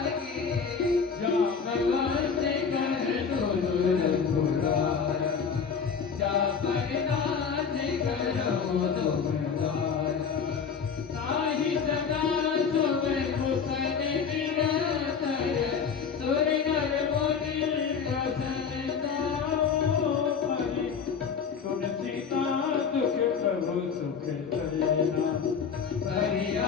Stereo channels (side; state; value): right; quieter; 6.3 dB